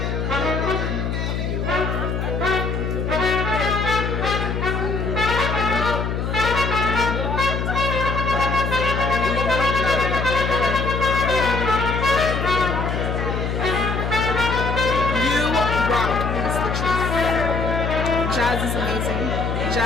Jazz is amazing.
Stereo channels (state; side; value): noise; left; hum, 1 dB below the sound